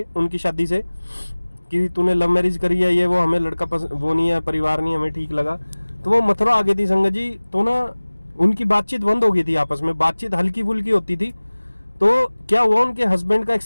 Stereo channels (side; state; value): both; inverted; correlation -1.00